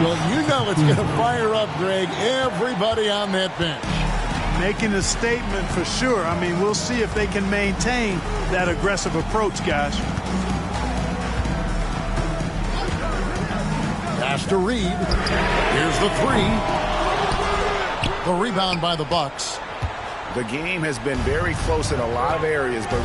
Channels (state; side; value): identical; both; correlation 1.00